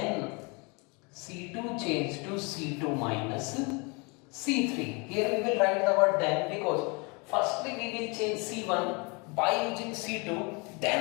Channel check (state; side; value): quieter; right; 30.4 dB